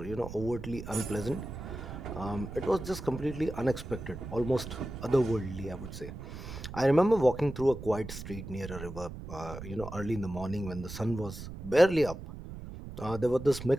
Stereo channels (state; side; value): noise; right; rumble, 11 dB below the sound